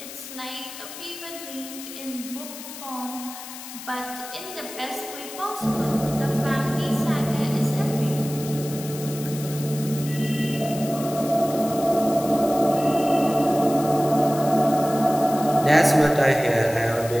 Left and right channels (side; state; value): left; noise; hiss, 12 dB below the sound